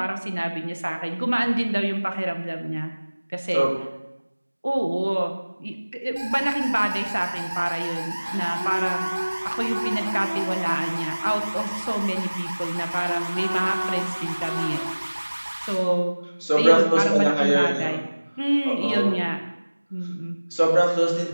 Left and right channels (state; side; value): inverted; both; correlation -1.00